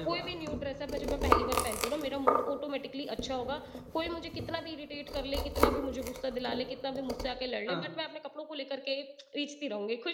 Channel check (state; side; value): identical; both; correlation 1.00